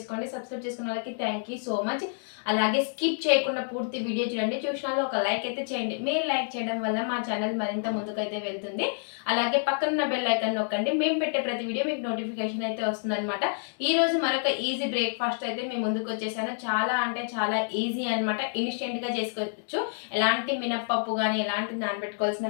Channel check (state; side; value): silent; right; digital silence